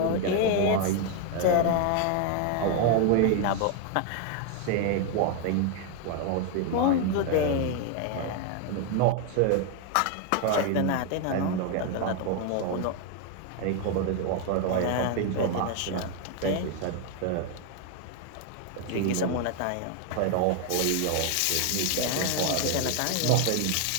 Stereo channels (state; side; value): different; both; correlation 0.01